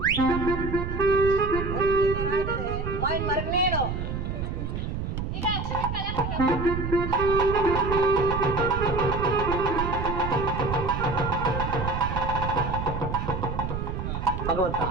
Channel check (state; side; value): noise; right; rumble, 4 dB below the sound